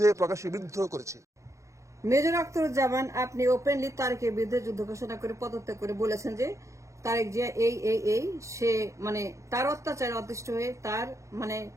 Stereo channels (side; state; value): left; late; 0.15 ms